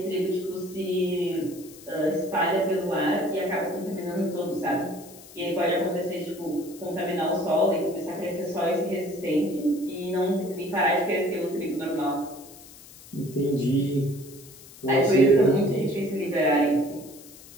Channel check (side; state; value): left; noise; hiss, 20 dB below the sound